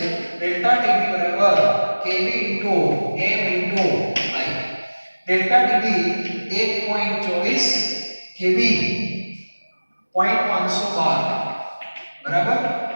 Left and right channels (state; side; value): inverted; both; correlation -1.00